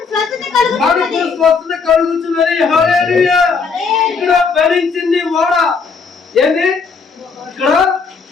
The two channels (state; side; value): quieter; right; 5.1 dB